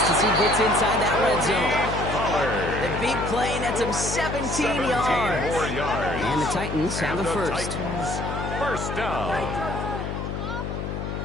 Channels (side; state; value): left; noise; hum, 4 dB below the sound